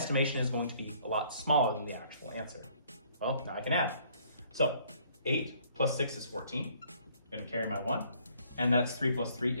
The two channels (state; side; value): inverted; both; correlation -0.61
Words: is going to be a lot smaller than the actual answer. Well, now I can add. So 8 plus 6 is 14. I'm going to carry my 1, and that's 3 plus 3